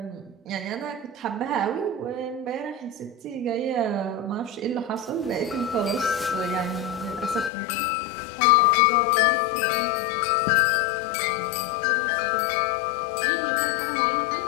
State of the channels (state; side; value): drops out; right; at 7.5 s